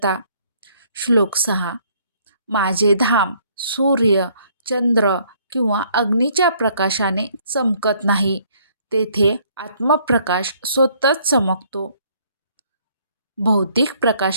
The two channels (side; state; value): both; inverted; correlation -0.64